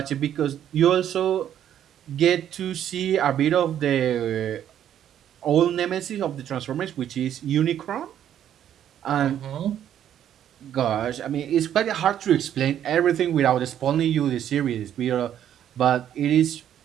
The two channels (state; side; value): quieter; left; 10.4 dB